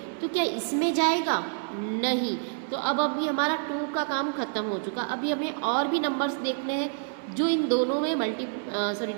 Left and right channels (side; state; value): left; silent; 60 dB below the other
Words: तो क्या इसमें जाएगा? नहीं. तो अब अभी हमारा 2 का काम ख़त्म हो चुका. अभी हमें और भी नंबर्स देखने हैं जो इन दोनों में